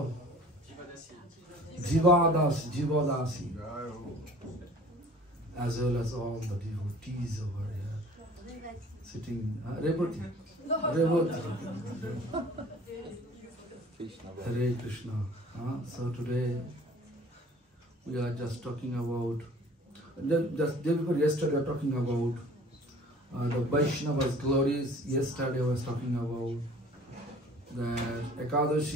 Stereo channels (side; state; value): both; normal; correlation 0.48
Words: Jivadasi, as well as all the devotees over here sitting. Revati. Hare Krishna. So today we are just talking about, just day before yesterday we were talking about the Vaishnava's glories. Yesterday I was talking about that